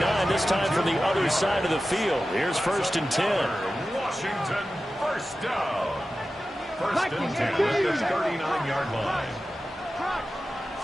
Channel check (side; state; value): both; normal; correlation 0.94